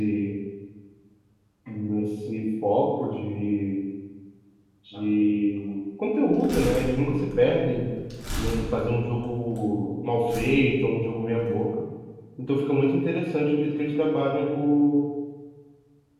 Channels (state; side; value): identical; both; correlation 1.00